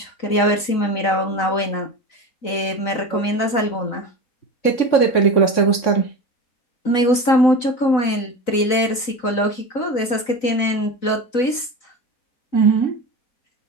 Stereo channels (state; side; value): late; right; 3.9 ms